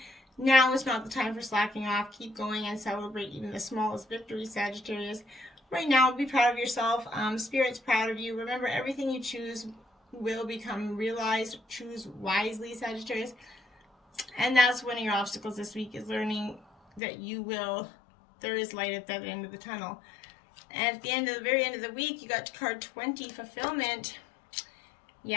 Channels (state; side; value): drops out; right; at 17.0 s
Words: Now is not the time for slacking off. Keep going and celebrate even the smallest victories, Sagittarius. Right now, be proud of yourself. Spirit's proud of you. Remember, everything you choose will become realized. Choose wisely, Sagittarius. And that's one of your obstacles this week, is learning that there is light at that end of the tunnel. And at the very end of the week, you got card 20, fulfillment.